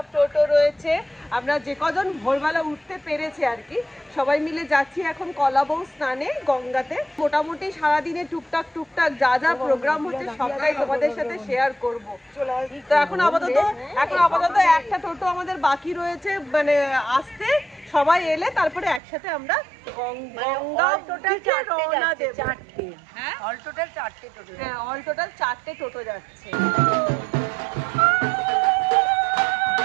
টোটো রয়েছে। আমরা যে কজন ভোরবেলা উঠতে পেরেছি আর কি, সবাই মিলে যাচ্ছি এখন কলাবউ স্নানে গঙ্গাতে। মোটামুটি সারাদিনে টুকটাক টুকটাক যা যা প্রোগ্রাম হচ্ছে সবটাই তোমাদের সাথে শেয়ার করব। তো এখন আপাতত একটা টোটো আমাদের বাকি রয়েছে, মানে আসতে। সবাই এলে তারপরে একসাথে আমরা গঙ্গা দিকে রওনা দেব। হ্যাঁ, অল টোটাল 4টে টোটো যাচ্ছে।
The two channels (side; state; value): left; drops out; at 19.0 s